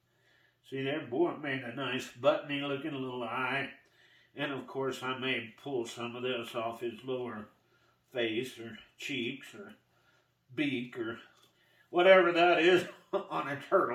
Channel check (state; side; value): identical; both; correlation 1.00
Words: see there, boy, it made a nice buttony looking little eye. And of course, I may pull some of this off his lower face or cheeks or beak or whatever that is on a